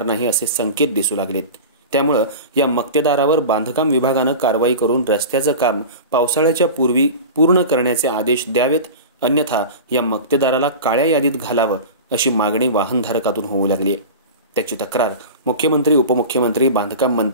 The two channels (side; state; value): both; inverted; correlation -0.31